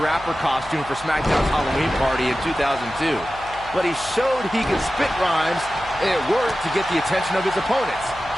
rapper costume for SmackDown's Halloween party in 2002. But he showed he could spit rhymes, and it worked to get the attention of his opponents.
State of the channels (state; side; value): noise; left; hum, 18 dB below the sound